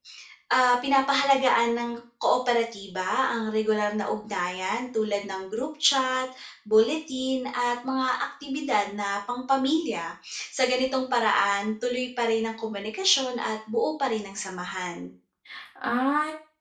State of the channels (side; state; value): both; identical; correlation 1.00